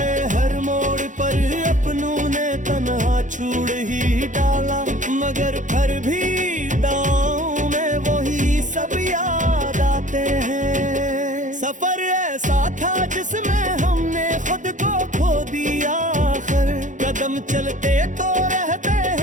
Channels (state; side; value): late; left; 0.37 ms